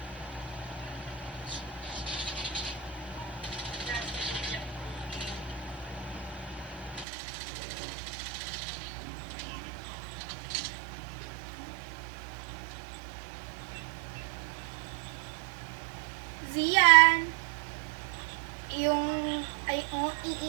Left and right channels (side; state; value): left; drops out; at 7.1 s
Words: Zian. Yung, ay, oh,